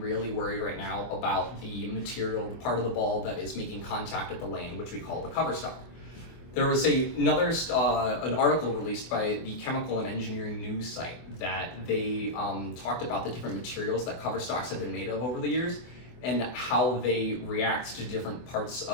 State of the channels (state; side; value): late; right; 24 ms